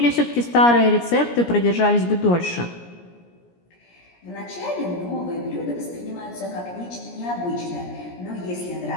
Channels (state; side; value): late; right; 17 ms